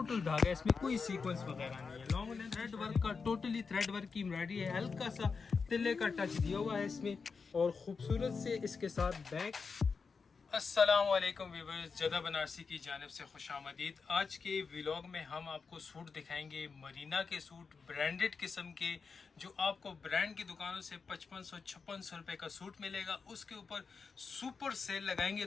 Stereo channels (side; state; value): right; quieter; 5.1 dB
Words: धागा इसमें कोई सीक्वेंस वगैरह नहीं है। लॉन्ग लेंथ थ्रेड वर्क का टोटली थ्रेड वर्क की एम्ब्रॉयडरी है। हल्का सा तिल्ले का टच दिया हुआ है इसमें और खूबसूरत से इसके साथ बैक। अस्सलाम वालेकुम व्यूअर्स, जदा बनारसी की जानिब से खुशामदीद। आज के व्लॉग में हम आपको सूट दिखाएंगे, मरीना के सूट, ब्रांडेड किस्म के, जो आपको ब्रांड की दुकानों से 5500-5600 रुपये का सूट मिलेगा। उसके ऊपर सुपर सेल लगाएंगे,